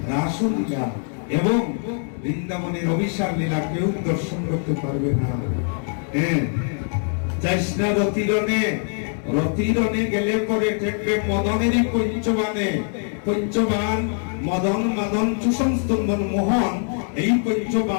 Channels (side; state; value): right; silent; 56 dB below the other